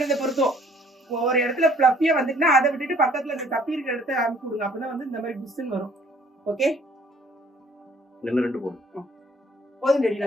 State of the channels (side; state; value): both; normal; correlation 0.59